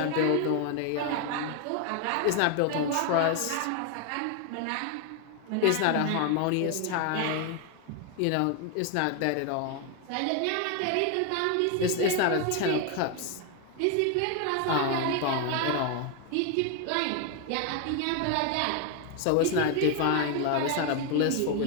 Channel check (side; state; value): both; different; correlation 0.01